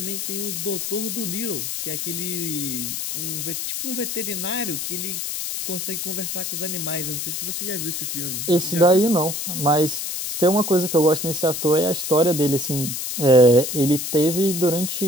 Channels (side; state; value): left; noise; hiss, 4 dB below the sound